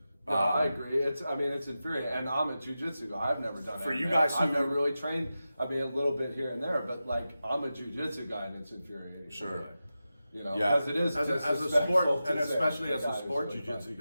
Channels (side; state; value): both; inverted; correlation -0.92